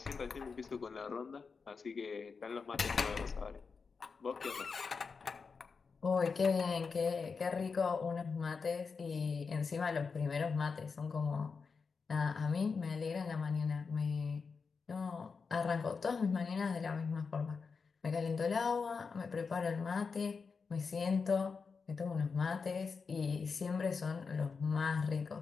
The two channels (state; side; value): quieter; right; 5.1 dB